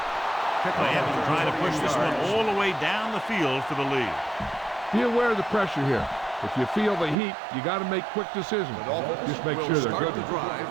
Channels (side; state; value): left; drops out; at 7.2 s